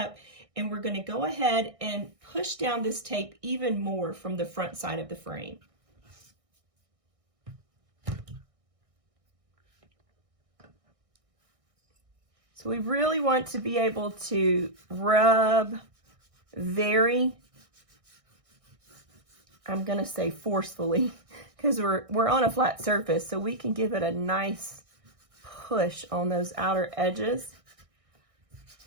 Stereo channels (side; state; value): left; late; 1.6 ms